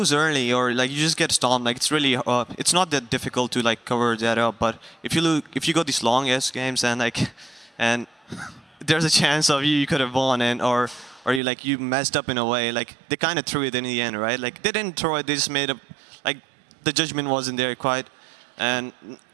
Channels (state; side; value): drops out; left; at 11.4 s